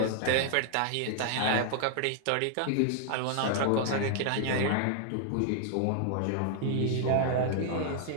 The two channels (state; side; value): different; both; correlation 0.00